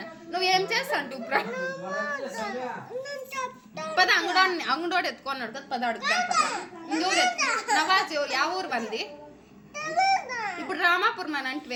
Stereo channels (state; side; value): identical; both; correlation 1.00